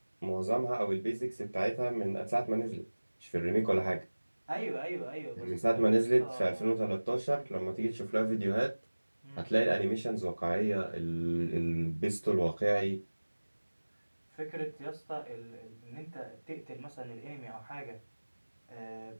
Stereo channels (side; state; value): both; inverted; correlation -1.00